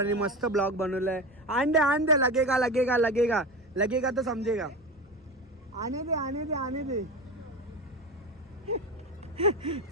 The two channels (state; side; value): normal; both; correlation 0.24